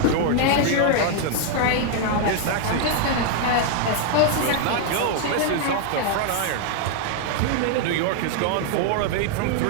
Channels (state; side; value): different; both; correlation 0.00